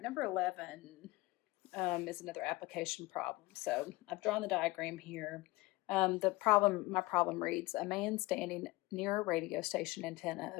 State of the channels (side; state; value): right; quieter; 21.0 dB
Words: number 11 is another application problem. So I've drawn the diagram here. My problem reads, a man standing near a radio station antenna